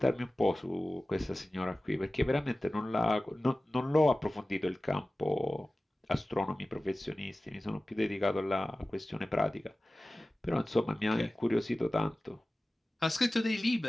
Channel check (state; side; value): normal; both; correlation 0.96